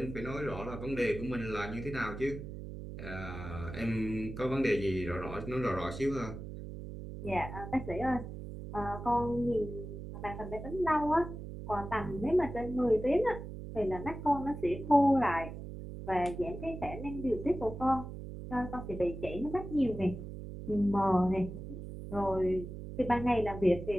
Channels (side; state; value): right; noise; hum, 9 dB below the sound